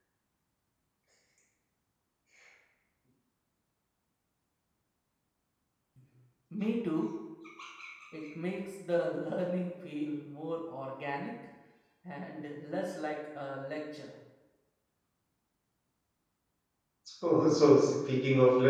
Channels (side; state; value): both; identical; correlation 1.00